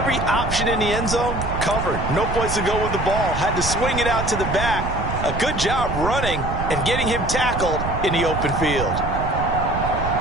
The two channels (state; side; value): noise; right; rumble, 4 dB below the sound